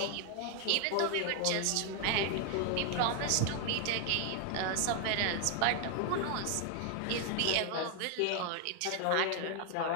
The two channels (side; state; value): both; different; correlation 0.00